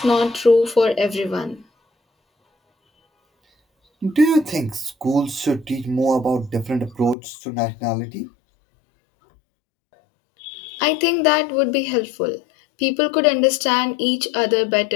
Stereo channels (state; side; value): drops out; right; at 7.2 s